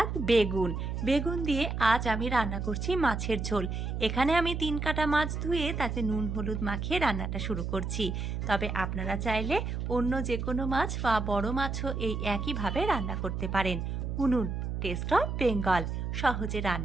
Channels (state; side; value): noise; right; hum, 3 dB below the sound